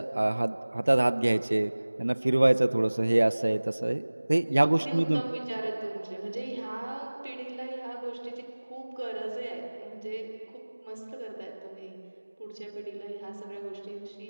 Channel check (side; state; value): both; inverted; correlation -1.00